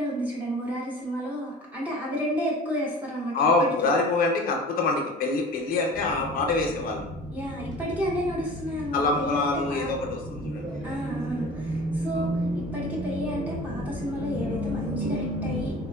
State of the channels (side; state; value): both; normal; correlation 0.40